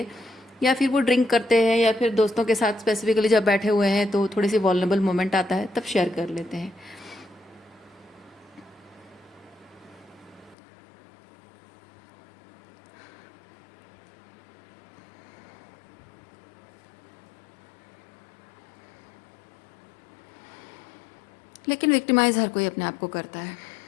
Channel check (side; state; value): right; drops out; at 10.6 s